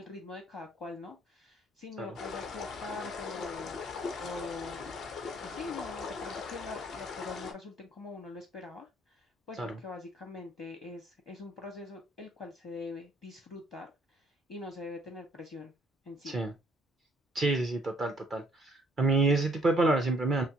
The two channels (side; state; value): both; normal; correlation 0.63